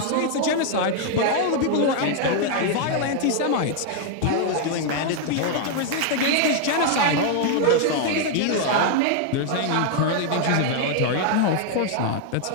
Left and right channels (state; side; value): different; both; correlation 0.00